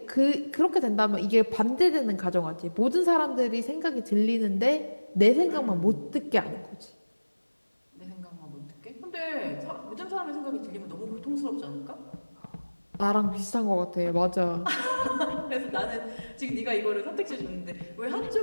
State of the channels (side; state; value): both; inverted; correlation -1.00